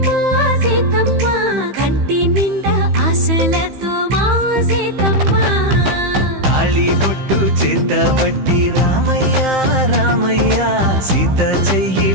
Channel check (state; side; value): late; left; 15 ms